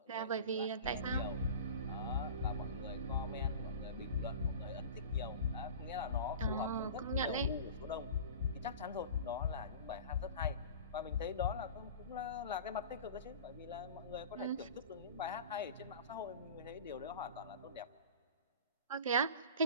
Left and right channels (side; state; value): both; inverted; correlation -0.36